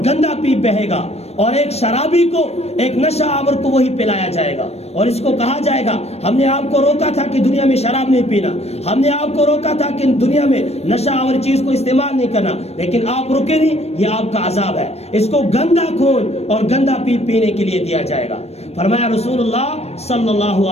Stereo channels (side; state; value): right; late; 0.31 ms